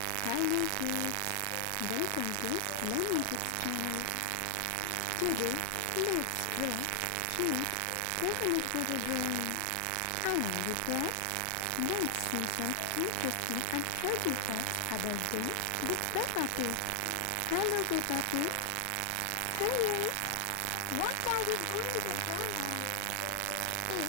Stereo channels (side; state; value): both; different; correlation 0.00